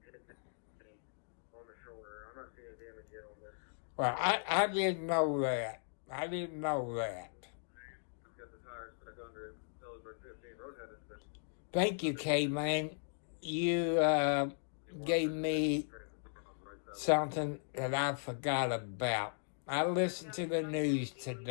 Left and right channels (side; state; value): right; silent; digital silence